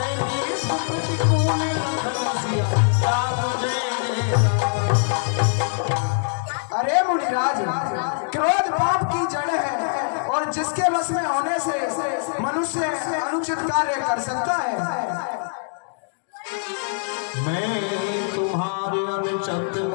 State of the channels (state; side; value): silent; right; digital silence